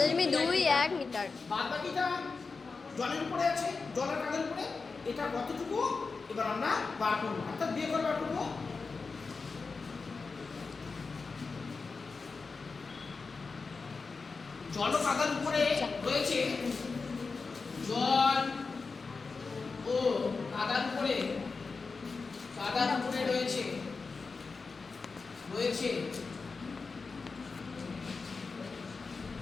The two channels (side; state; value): right; quieter; 4.4 dB